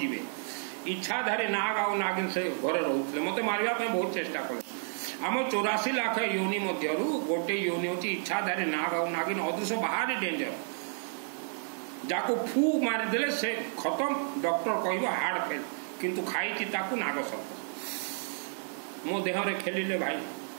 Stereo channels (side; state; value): left; silent; 57 dB below the other